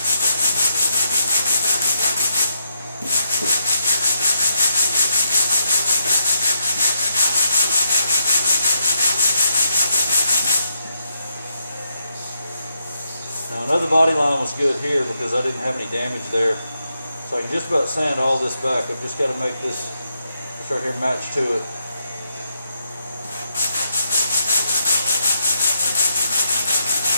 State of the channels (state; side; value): inverted; both; correlation -0.79